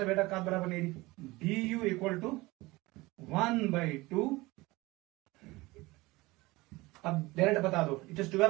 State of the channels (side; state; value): left; quieter; 21.3 dB